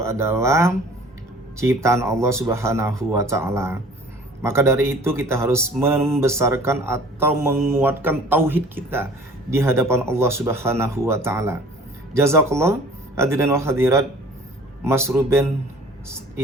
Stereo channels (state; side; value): normal; both; correlation 0.49